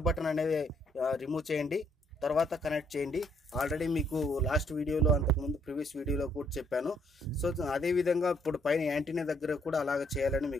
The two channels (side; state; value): both; normal; correlation 0.69